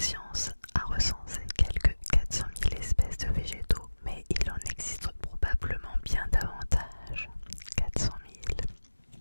a recensé quelques 400 000 espèces de végétaux, mais il en existe probablement bien davantage. 400 000.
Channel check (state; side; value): inverted; both; correlation -1.00